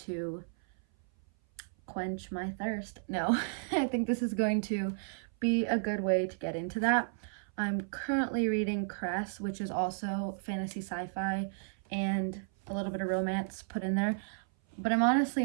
quench my thirst. No, I think this is going to be a good way to get into that. I'm currently reading Cress, which is also fantasy sci-fi and a little bit of romance put in there. But I'm honestly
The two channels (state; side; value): silent; left; 56 dB below the other